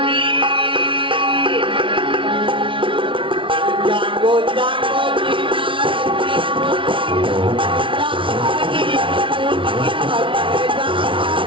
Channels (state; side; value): late; left; 0.25 ms